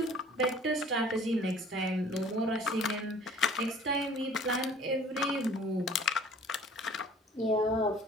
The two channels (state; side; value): normal; both; correlation 0.50